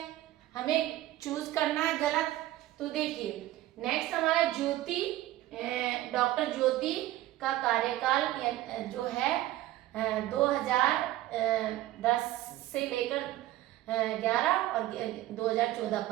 हमें चूज करना है गलत। तो देखिए नेक्स्ट हमारा डॉक्टर ज्योति का कार्यकाल जो है 2010 से लेकर 11 और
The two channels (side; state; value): left; quieter; 15.3 dB